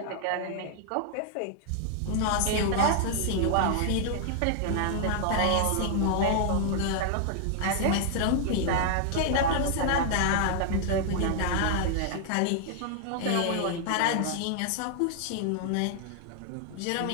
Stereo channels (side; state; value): both; different; correlation 0.00